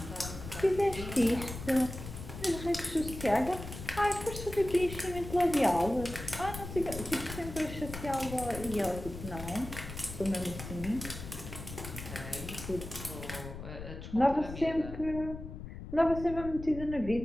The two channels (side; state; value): left; noise; rumble, 10 dB below the sound